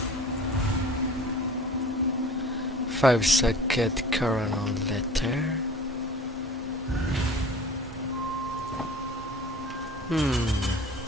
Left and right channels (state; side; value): normal; both; correlation 0.43